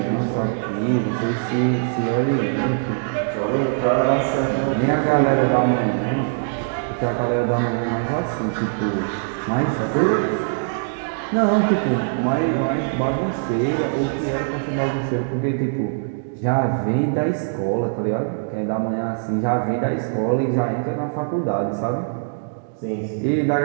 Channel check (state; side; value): silent; left; digital silence